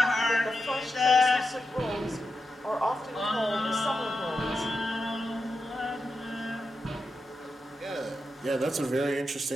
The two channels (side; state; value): both; normal; correlation 0.88